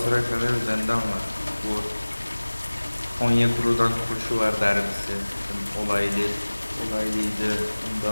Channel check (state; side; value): inverted; both; correlation -1.00